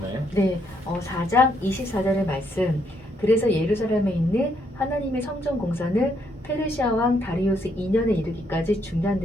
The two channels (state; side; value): normal; both; correlation 0.73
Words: 네, 4장 24절의 말씀. 그래서 예루살렘에 있는 하나님의 성전 공사는 페르시아 왕 다리우스 2년에 이르기까지